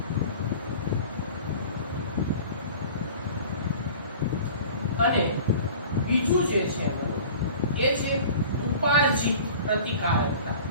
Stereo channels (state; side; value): inverted; both; correlation -0.43